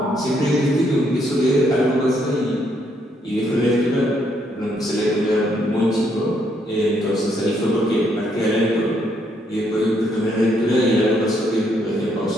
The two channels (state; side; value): normal; both; correlation 0.73